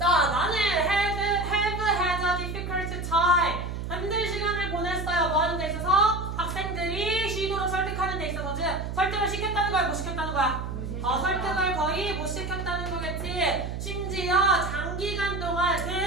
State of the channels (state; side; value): noise; right; hum, 5 dB below the sound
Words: 나는 have had a difficult time. 힘든 시간을 보냈어요. 뭐 하는 데 있어서? 학생들이 쉬도록 설득하는 데 있어서 설득을 시켰다는 거야? 못 시켰다는 거야? 설득을 거의 못 시켰다는 거겠지. 심지어 장기간 동안